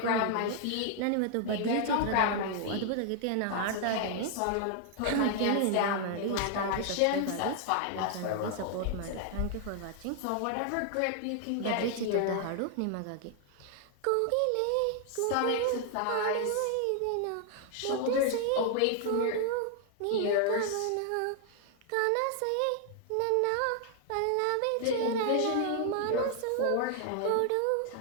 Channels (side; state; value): both; different; correlation 0.00